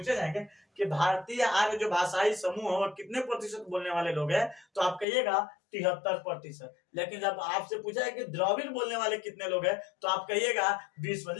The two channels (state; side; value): drops out; right; at 5.1 s